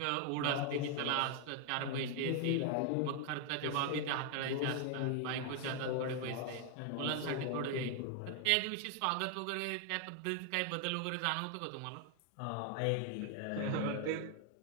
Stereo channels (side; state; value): both; different; correlation 0.00